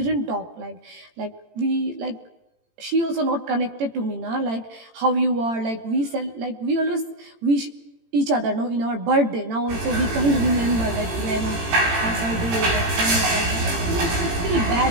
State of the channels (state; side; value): late; left; 18 ms